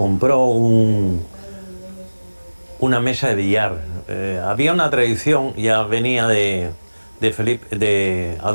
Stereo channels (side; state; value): both; inverted; correlation -1.00